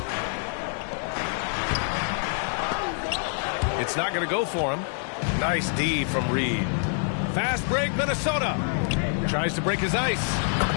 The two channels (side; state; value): right; silent; 58 dB below the other